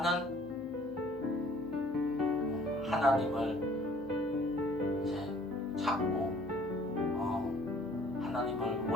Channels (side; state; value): both; normal; correlation 0.56